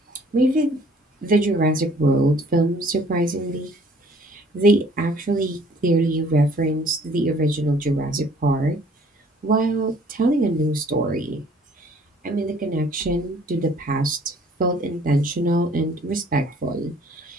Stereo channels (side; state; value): both; normal; correlation 0.57